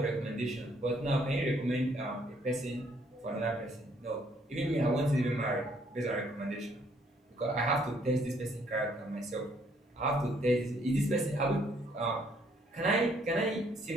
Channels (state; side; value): normal; both; correlation 0.66